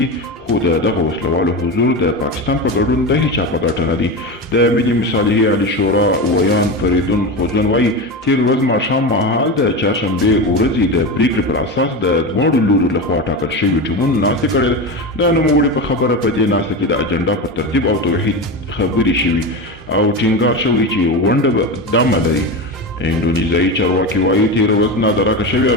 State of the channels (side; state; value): both; normal; correlation 0.21